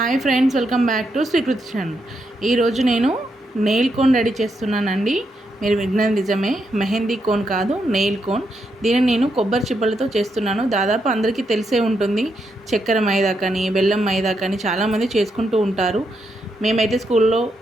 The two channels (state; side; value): normal; both; correlation 0.81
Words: Hi friends, welcome back to Srikriti channel. ఈరోజు నేను nail cone ready చేస్తున్నానండి. మీరు విన్నది నిజమే, మెహందీ కోన్ కాదు, నెయిల్ కోన్. దీన్ని నేను కొబ్బరి చిప్పలతో చేస్తున్నాను. దాదాపు అందరికీ తెలిసే ఉంటుంది. చక్కెర మైదా కానీ బెల్లం మైదా కానీ చాలామంది చేసుకుంటూ ఉంటారు. మేమైతే స్కూల్లో